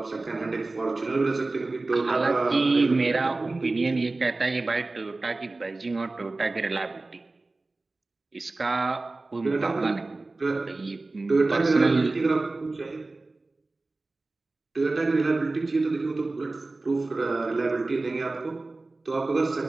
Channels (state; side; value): quieter; left; 3.3 dB